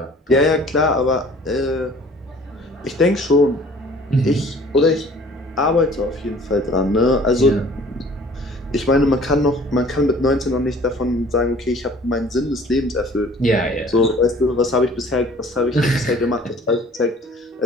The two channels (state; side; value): normal; both; correlation 0.51